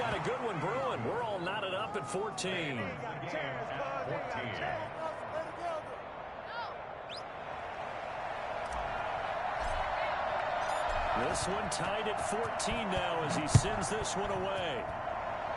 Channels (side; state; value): both; identical; correlation 1.00